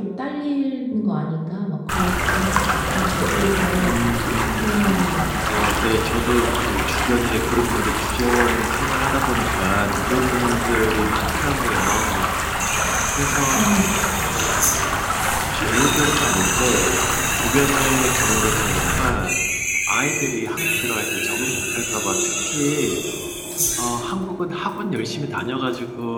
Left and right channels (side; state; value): both; identical; correlation 1.00